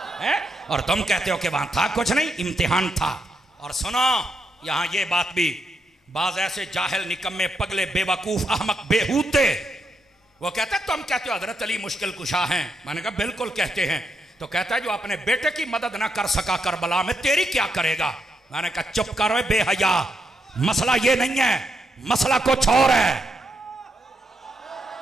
है, और तुम कहते हो कि वहां था कुछ नहीं, इम्तिहान था। और सुनो यहां ये बात भी, बाज ऐसे जाहिल निकम्मे पगले बेवकूफ अहमक बेहूते वो कहते तुम कहते हो हजरत अली मुश्किल कुशा हैं। मैंने कहा बिल्कुल कहते हैं। तो कहता है जो अपने बेटे की मदद ना कर सका करबला में, तेरी क्या करेगा? मैंने कहा चुप करो बेहया, मसला ये नहीं है, मसला कुछ और है।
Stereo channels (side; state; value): both; normal; correlation 0.81